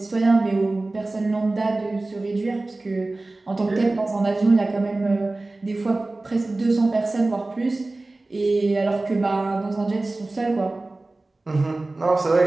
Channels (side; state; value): left; quieter; 3.0 dB